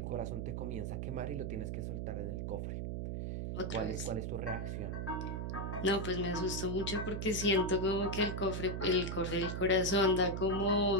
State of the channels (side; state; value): right; noise; hum, 3 dB below the sound